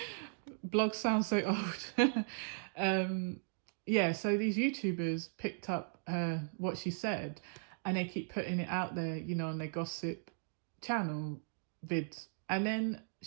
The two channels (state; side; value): silent; left; digital silence